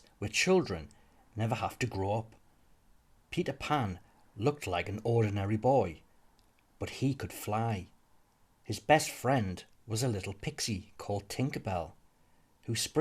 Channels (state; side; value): identical; both; correlation 1.00